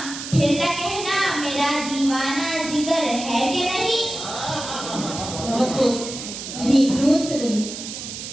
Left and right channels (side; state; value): right; noise; hiss, 8 dB below the sound